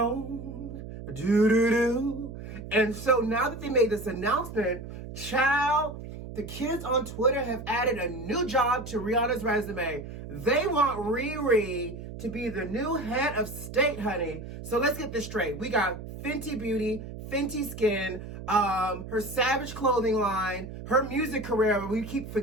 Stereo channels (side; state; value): right; noise; hum, 11 dB below the sound